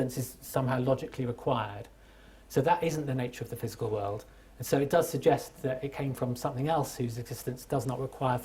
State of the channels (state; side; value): identical; both; correlation 1.00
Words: is somehow logically required. So that isn't the nature of the physical world. And so it does suggest that it came from something else whose existence does not require